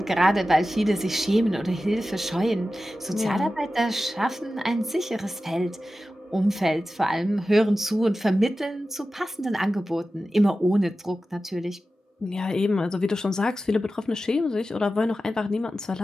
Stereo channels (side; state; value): both; normal; correlation 0.94